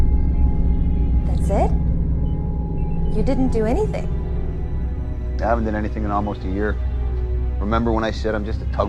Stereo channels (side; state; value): both; identical; correlation 1.00